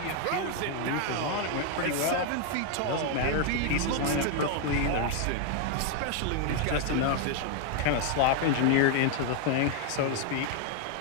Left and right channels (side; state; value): both; different; correlation 0.00